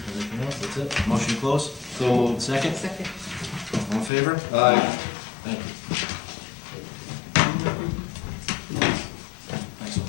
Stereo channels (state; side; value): drops out; right; at 4.1 s